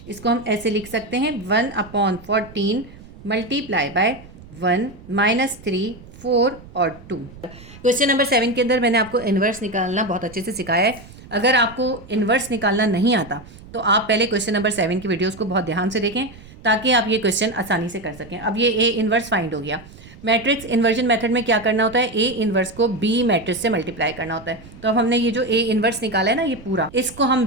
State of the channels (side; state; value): right; noise; rumble, 19 dB below the sound